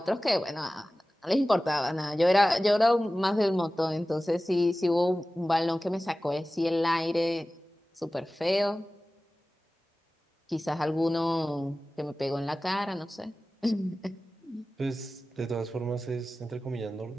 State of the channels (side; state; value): both; normal; correlation 0.96